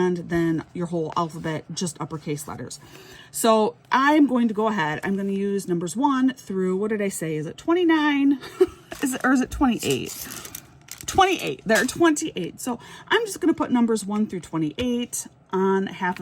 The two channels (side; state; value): both; identical; correlation 1.00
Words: then your whole alphabet, just uppercase letters. So I'm going to go ahead. I'm going to use numbers 1 through, what did I say? Is it 29? Is it 28? 28. There are 28. So I'm just going to put numbers 1 through 28 on half